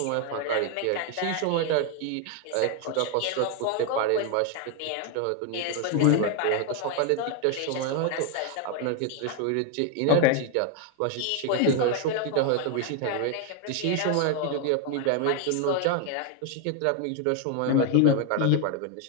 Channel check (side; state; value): both; different; correlation 0.01